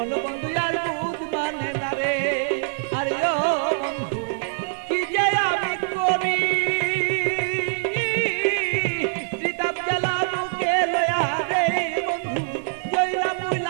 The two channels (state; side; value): silent; left; 57 dB below the other